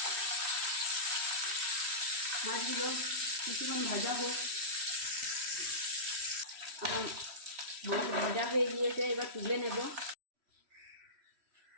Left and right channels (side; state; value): left; late; 3.1 ms